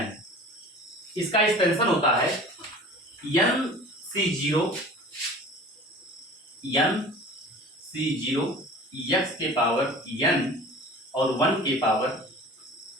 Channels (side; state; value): both; normal; correlation 0.41